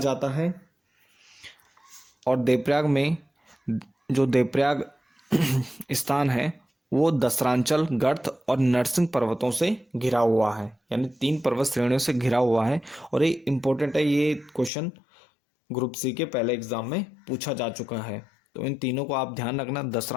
है। और देवप्रयाग में जो देवप्रयाग स्थान है वो दसरांचल, गर्त और नरसिंह पर्वतों से घिरा हुआ है, यानी 3 पर्वत श्रेणियों से घिरा हुआ है। और ये इम्पोर्टेंट है, ये क्वेश्चन ग्रुप सी के पहले एग्जाम में पूछा जा चुका है। तो इन तीनों को आप ध्यान रखना,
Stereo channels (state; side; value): drops out; right; at 14.7 s